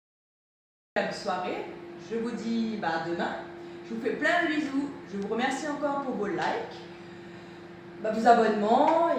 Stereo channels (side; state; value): both; identical; correlation 1.00